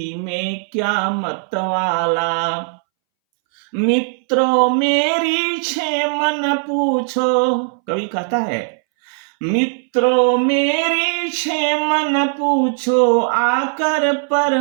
में क्या मतवाला। मित्रों मेरी क्षेमन पूछो, कवि कहता है, मित्रों मेरी क्षेमन पूछो, आकर पर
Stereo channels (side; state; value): left; silent; 65 dB below the other